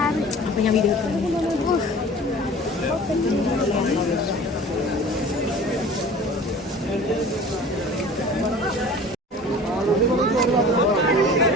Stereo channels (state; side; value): normal; both; correlation 0.43